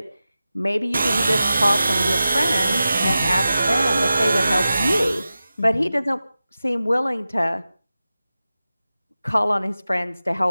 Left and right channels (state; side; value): inverted; both; correlation -0.94